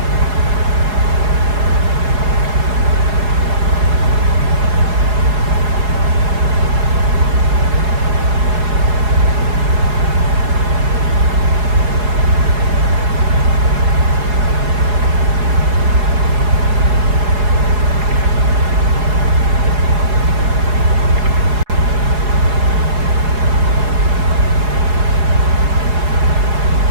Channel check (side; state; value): left; late; 4.8 ms